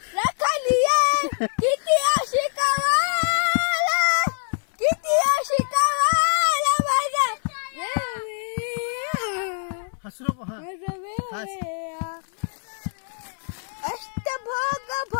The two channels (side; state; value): right; silent; 63 dB below the other